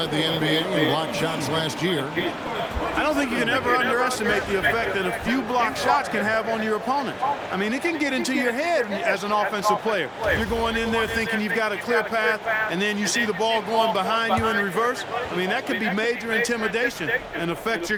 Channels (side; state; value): both; identical; correlation 1.00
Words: the NBA in block shots last year. I don't think you can ever underestimate the effect that a few block shots can have on your opponent. I mean, it can get into your head as an offensive player. You're going in there thinking you've got a clear path, and then you see the ball going behind you in reverse. I mean, that could be major intimidation and affect